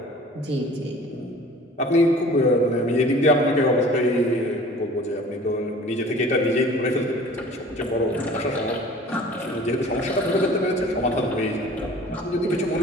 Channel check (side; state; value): both; normal; correlation 0.46